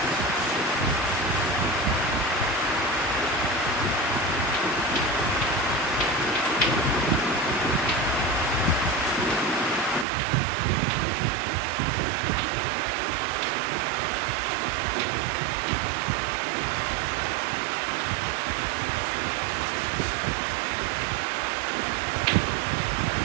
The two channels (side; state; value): left; drops out; at 10.1 s